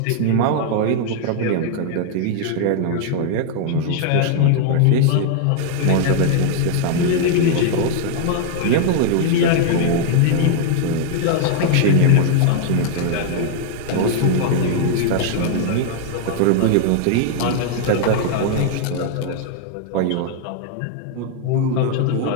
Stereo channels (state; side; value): different; both; correlation 0.00